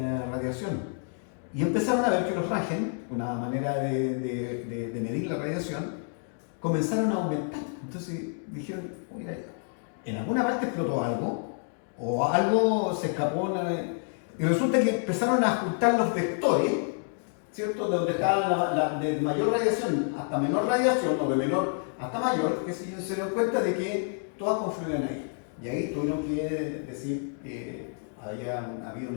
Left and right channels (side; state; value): right; silent; 57 dB below the other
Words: radiación. Y empezaron a ver que los Röntgen, una manera de medir la radiación, comenzaron a aumentar. Entonces dijeron, mira, en alguna parte explotó algo, o algo se escapó, y resulta que empezaron a ajustar los vectores, ¿cierto? De donde estaba de mayor radiación hasta menor radiación, o de menor hasta mayor, que se dieron cuenta de que todas confluían ahí. Y ahí tuvieron que decir que había habido un